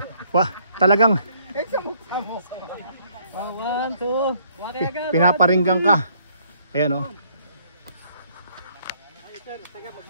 wah, talagang Samok-samok! 1, 2. pinaparinggang ka. Ayan oh.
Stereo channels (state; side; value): inverted; both; correlation -0.65